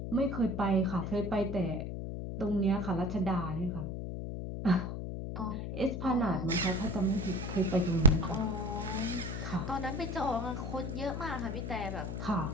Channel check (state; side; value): noise; left; hum, 5 dB below the sound